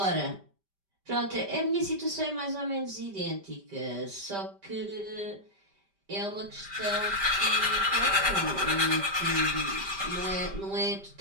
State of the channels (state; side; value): late; left; 5.1 ms